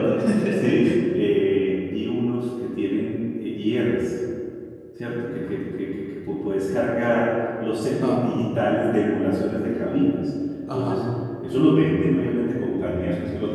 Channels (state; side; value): identical; both; correlation 1.00